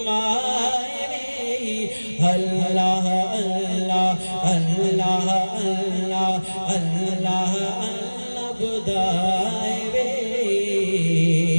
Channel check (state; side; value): inverted; both; correlation -1.00